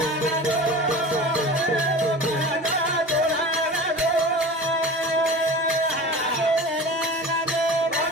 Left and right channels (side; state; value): both; normal; correlation 0.35